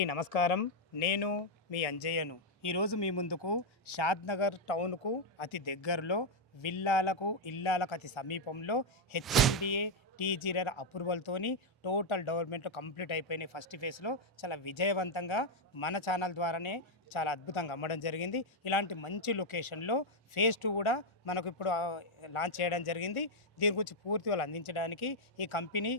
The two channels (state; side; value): normal; both; correlation -0.01